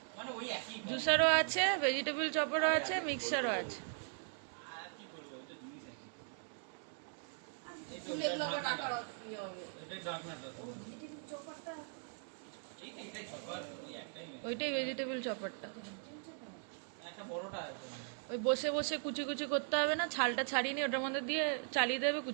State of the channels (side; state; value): left; silent; 52 dB below the other